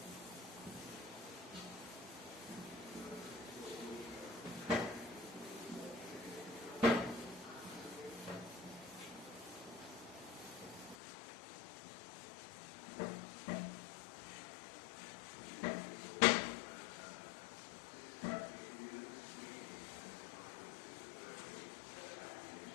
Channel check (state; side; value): drops out; right; at 11.0 s